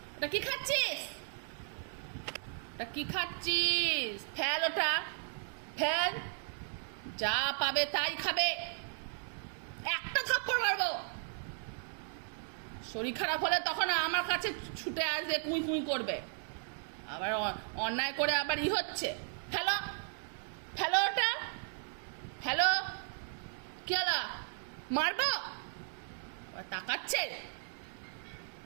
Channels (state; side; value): silent; left; 54 dB below the other